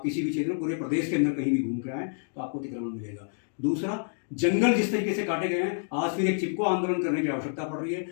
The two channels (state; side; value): silent; right; digital silence